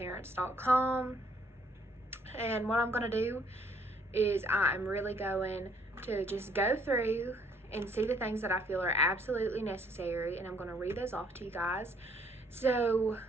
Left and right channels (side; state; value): both; normal; correlation 0.65